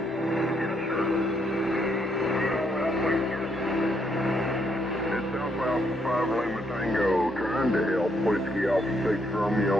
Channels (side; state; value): both; normal; correlation 0.74